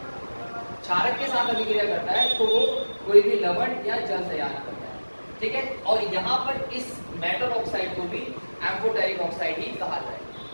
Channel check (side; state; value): both; inverted; correlation -1.00